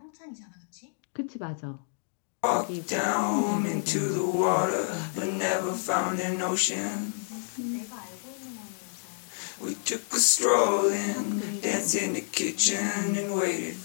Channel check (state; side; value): silent; right; digital silence